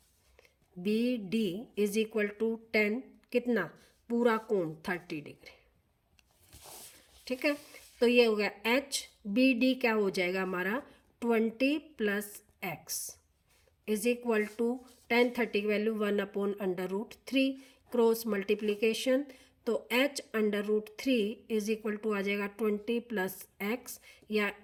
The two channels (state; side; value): identical; both; correlation 1.00